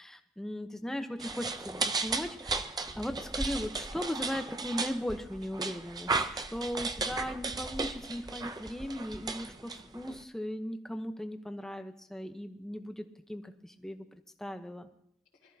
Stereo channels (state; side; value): normal; both; correlation 0.63